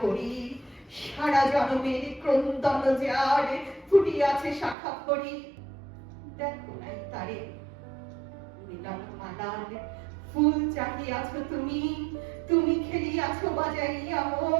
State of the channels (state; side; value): drops out; left; at 4.8 s